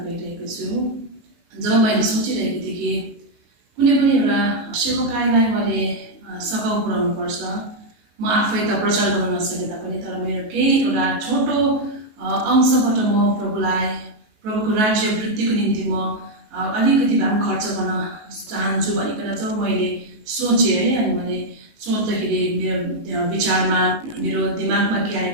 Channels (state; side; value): late; left; 19 ms